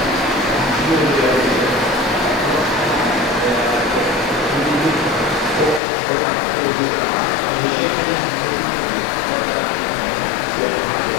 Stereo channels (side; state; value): right; drops out; at 5.8 s